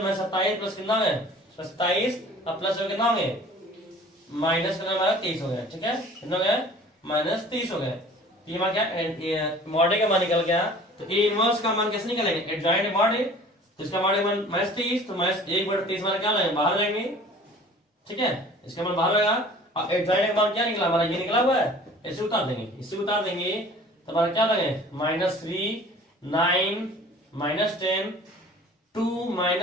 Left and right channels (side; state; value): both; normal; correlation 0.47